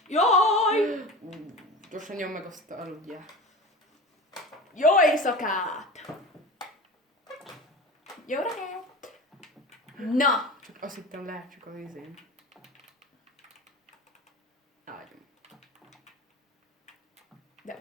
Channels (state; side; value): normal; both; correlation 0.32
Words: Jaj! Gyorsan nyom meg azt aludjál. Jó éjszakát! Jó reggelt! Na! Csak azt hittem lehet csak az izén. Ágyom. De